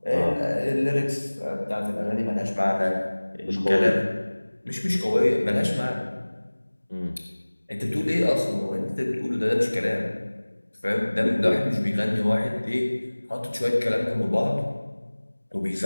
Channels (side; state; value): both; inverted; correlation -1.00